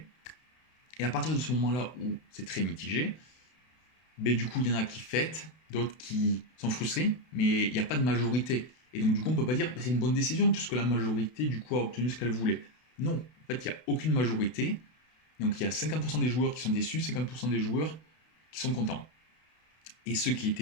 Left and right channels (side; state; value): right; late; 32 ms